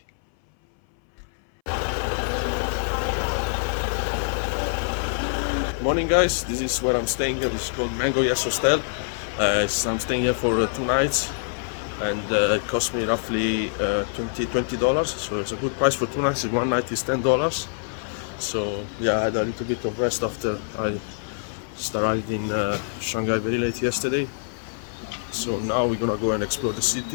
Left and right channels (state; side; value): silent; right; 60 dB below the other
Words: Morning guys, this is where I'm staying here. It's called Mango Yes Hostel. I'm staying here for 2 nights, and it cost me roughly $20. So it's a good price for 2 nights. 1 night is $10. So yeah, I had a little bit of rest after I just arrived in Shanghai very late yesterday. So now we're gonna go and explore the